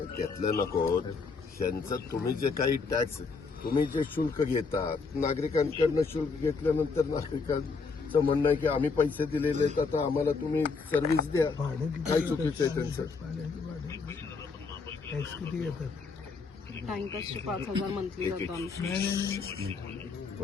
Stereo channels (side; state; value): right; quieter; 4.7 dB